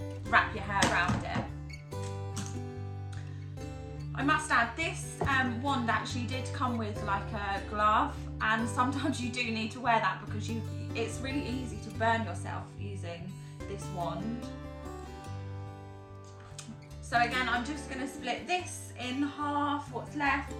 your hair around it. I must add, this wand actually did come with like a glove, and sometimes you do need to wear that because it's really easy to burn yourself using this wand. So again, I'm just going to split this in half, what's left.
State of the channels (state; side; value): identical; both; correlation 1.00